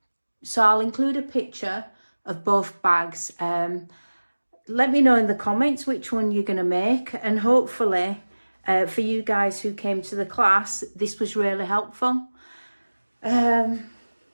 So I'll include a picture of both bags. Let me know in the comments which one you're going to make, and hopefully for you guys who came to the class, this was really helpful. Yeah,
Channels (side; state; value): both; inverted; correlation -1.00